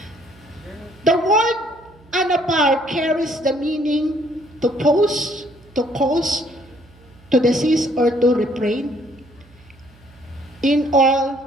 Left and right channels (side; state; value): right; noise; hum, 27 dB below the sound